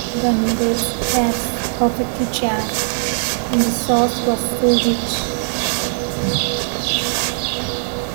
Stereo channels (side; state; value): left; silent; digital silence